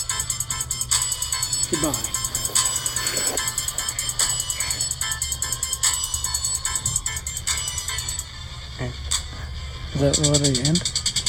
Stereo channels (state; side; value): identical; both; correlation 1.00